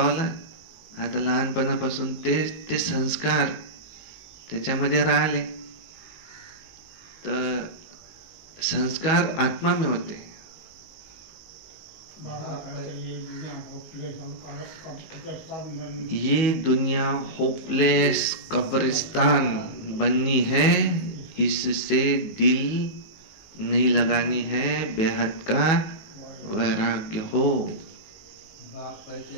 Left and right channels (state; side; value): late; right; 19 ms